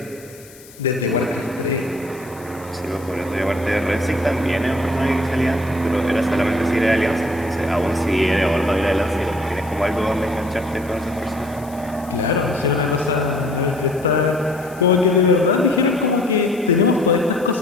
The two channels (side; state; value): left; noise; hiss, 22 dB below the sound